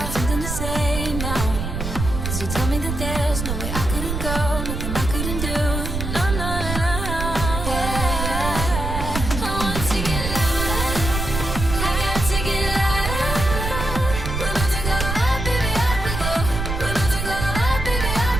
got something to say now. 'Cause you told me that there's no way I couldn't go, nothing I couldn't do. No, no, no, no. Yeah. I want to get louder, I got to get louder. We're about to go up, baby, up we go. We're about to go up, baby, up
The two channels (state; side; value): noise; right; rumble, 4 dB below the sound